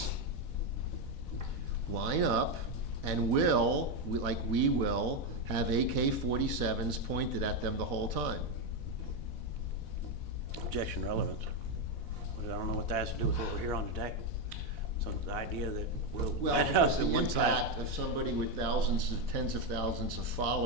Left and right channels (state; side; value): late; right; 4.1 ms